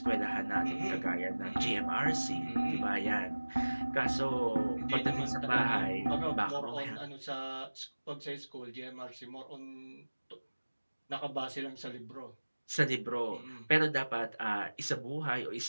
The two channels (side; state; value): both; inverted; correlation -1.00